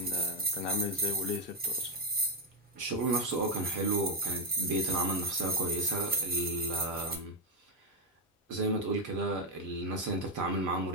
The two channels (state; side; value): normal; both; correlation 0.04